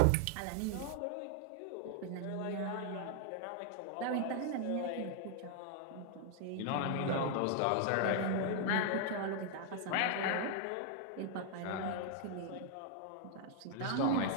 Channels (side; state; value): both; different; correlation 0.00